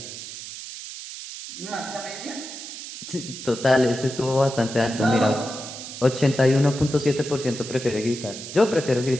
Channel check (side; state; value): right; noise; hiss, 11 dB below the sound